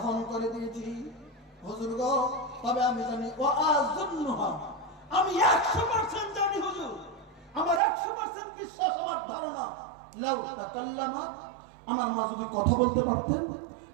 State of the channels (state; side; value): drops out; left; at 7.8 s